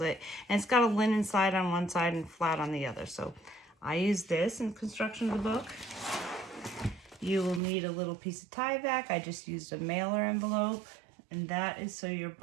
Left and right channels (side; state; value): left; drops out; at 7.6 s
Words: And it's got a linen side on one side and flat on the other. So I use this in construction of the book. You will need a little piece of Tyvek. I just used a mailer envelope. And that is so your